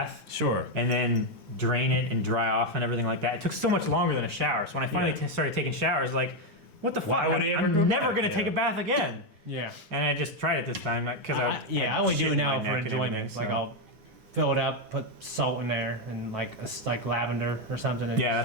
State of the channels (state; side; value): late; left; 7.5 ms